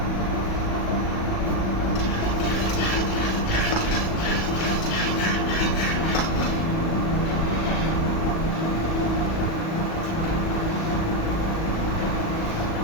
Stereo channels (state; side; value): late; right; 37 ms